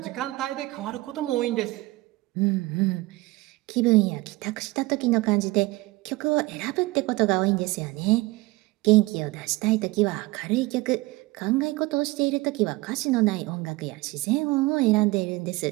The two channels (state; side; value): quieter; left; 21.0 dB